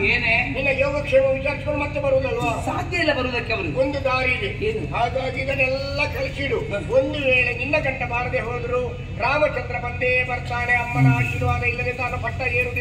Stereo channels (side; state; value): both; identical; correlation 1.00